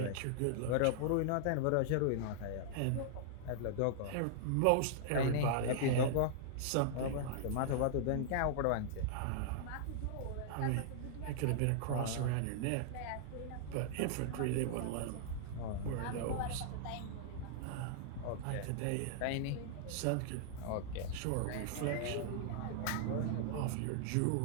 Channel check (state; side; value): different; both; correlation -0.01